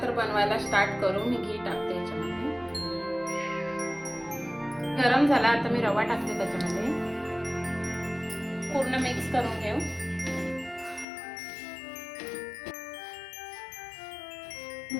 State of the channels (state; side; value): drops out; right; at 11.1 s